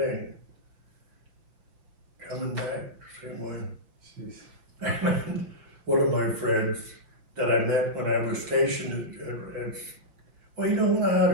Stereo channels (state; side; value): late; left; 5.6 ms